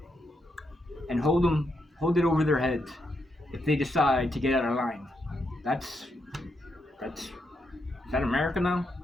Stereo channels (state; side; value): normal; both; correlation 0.81